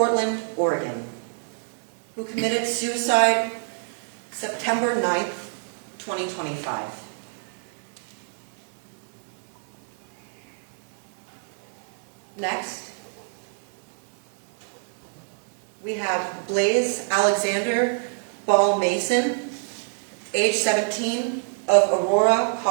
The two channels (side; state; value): left; silent; 61 dB below the other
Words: Oregon, who committed suicide September 9th, 2025. Next, we have Blaze Alexander Ball Mason, age 17, of Aurora,